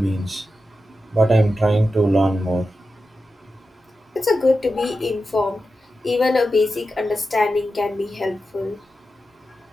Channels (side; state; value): both; normal; correlation 0.91